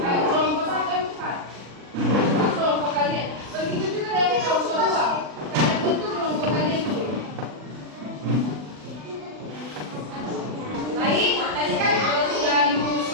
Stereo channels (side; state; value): left; late; 40 ms